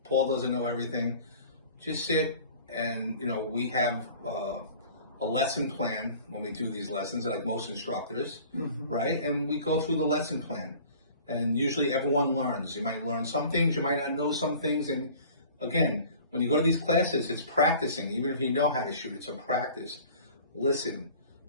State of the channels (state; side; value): inverted; both; correlation -0.46